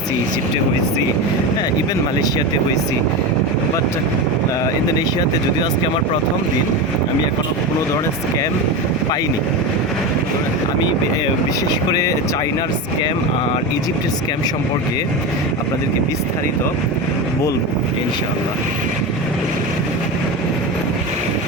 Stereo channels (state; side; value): normal; both; correlation 0.21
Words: ইজিপ্টে হয়েছি, হ্যাঁ, ইভেন মালয়েশিয়াতে হয়েছি। বাট ইন্দোনেশিয়াতে যদিও আজকে আমার প্রথম দিন, আমি এখনও কোনো ধরনের স্ক্যাম পাইনি। আমি বিশেষ করে চাইনার স্ক্যাম আর ইজিপ্টের স্ক্যাম সম্পর্কে আপনাদেরকে বিস্তারিত বলবো ইনশাআল্লাহ।